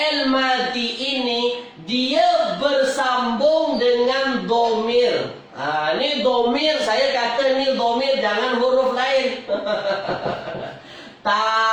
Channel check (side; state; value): both; identical; correlation 1.00